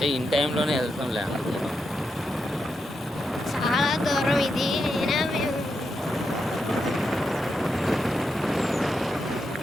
ఇన్ టైంలోనే వెళ్తాంలే అనుకున్నాం. చాలా దూరం ఇది. అయినా మేము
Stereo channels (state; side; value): normal; both; correlation 0.85